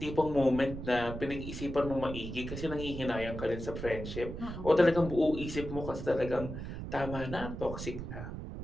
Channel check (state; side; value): noise; right; rumble, 8 dB below the sound